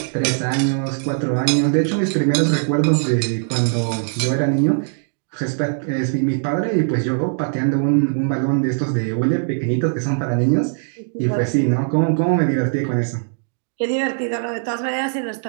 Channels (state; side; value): silent; left; digital silence